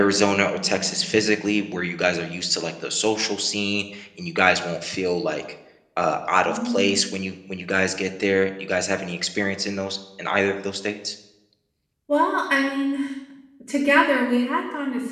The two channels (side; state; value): both; identical; correlation 1.00